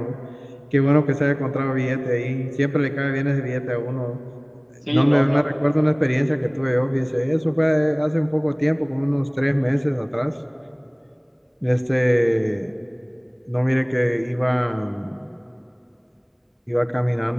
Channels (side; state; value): both; identical; correlation 1.00